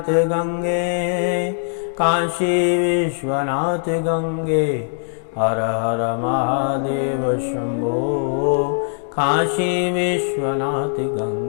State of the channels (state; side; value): silent; right; digital silence